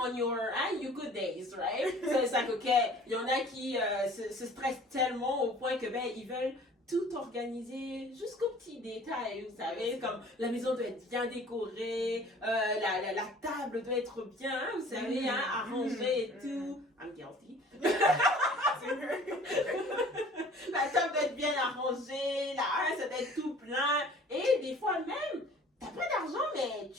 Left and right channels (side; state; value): both; normal; correlation 0.49